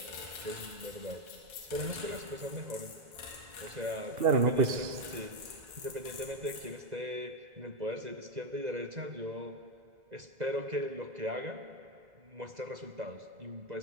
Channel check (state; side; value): late; left; 2.0 ms